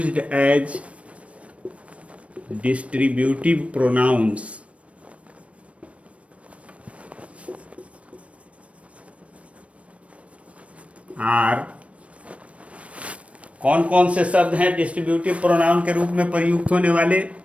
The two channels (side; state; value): left; late; 0.063 ms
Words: as distributive pronouns are, कौन कौन से शब्द हैं डिस्ट्रीब्यूटिव प्रोनाउन के रूप में प्रयुक्त होने वाले?